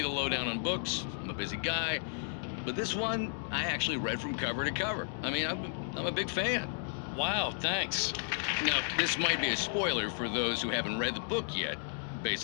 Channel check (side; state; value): right; silent; digital silence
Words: the lowdown on books. I'm a busy guy. But this one, I actually read from cover to cover. I mean, I'm a big fan. Wow, thanks. Now, this might be a spoiler for those who haven't read the book yet. Based